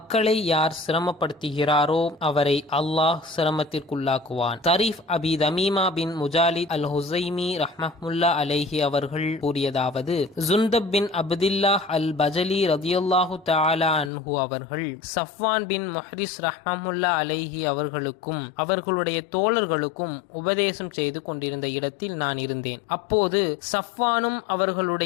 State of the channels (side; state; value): right; drops out; at 14.1 s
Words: யார் சிரமப்படுத்துகிறாரோ அவரை அல்லாஹ் சிரமத்திற்குள்ளாக்குவான். தரீஃப் அபி தமீமா பின் முஜாலித் அல் ஹுசைமி ரஹ்மத்துல்லா அலைஹி அவர்கள் கூறியதாவது, ஜுந்தப் பின் அப்துல்லாஹ் அல் பஜலி ரதியல்லாஹு தஆலா அன்ஹு அவர்கள் சஃப்வான் பின் முஹ்ரிஸ் ரஹ்மத்துல்லா அலைஹி அவர்களுக்கும் அவர்களுடைய தோழர்களுக்கும் உபதேசம் செய்து கொண்டிருந்த இடத்தில் நான் இருந்தேன். அப்போது சஃப்வானும்